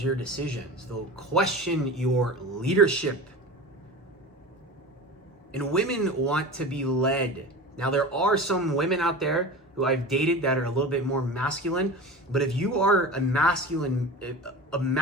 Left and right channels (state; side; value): normal; both; correlation 0.32